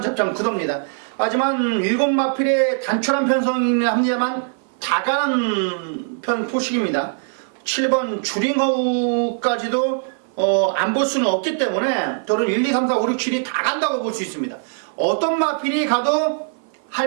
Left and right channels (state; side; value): silent; left; 56 dB below the other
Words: 접점 구도입니다. 하지만 7마필의 단촐한 편성이긴 합니다만 다 가는 편 포식입니다. 7번 주링허우까지도 안 볼 수는 없기 때문에 저는 1, 2, 3, 4, 5, 6, 7이 다 간다고 볼 수 있습니다. 어떤 마필이 가도